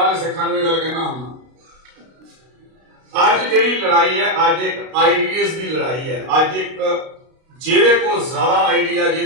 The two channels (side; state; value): left; late; 32 ms